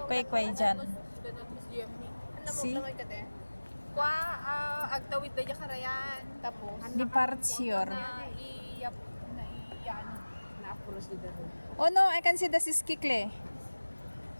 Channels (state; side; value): inverted; both; correlation -1.00